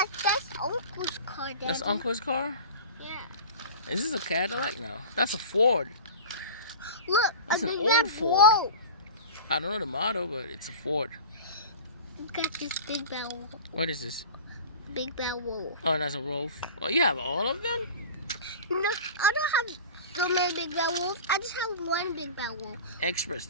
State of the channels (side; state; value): both; inverted; correlation -0.35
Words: Uncle's car, Daddy. That's Uncle's car? Yeah. Is this a Cadillac? No. That's a Ford. Look, That's a an big old red Ford. boat. I don't know the model, but it's a Ford. Got this big bad wolf. What is this? Big bad wolf. Oh, that's a Wolf. Oh, you have all of them? No, I don't have so many big bad wolves. I just have one big bad wolf. Express.